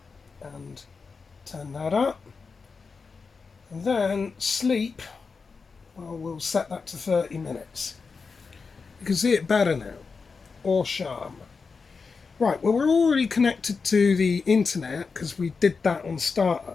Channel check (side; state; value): right; quieter; 4.9 dB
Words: and turn that up. And then sleep, well, we'll set that to 30 minutes. You can see it better now, or charm. Right, well, we're already connected to the internet because we did that on